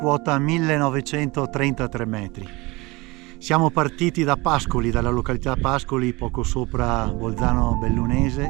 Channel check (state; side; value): quieter; left; 23.6 dB